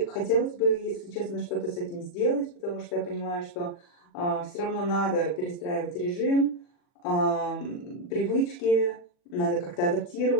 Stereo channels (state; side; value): late; right; 40 ms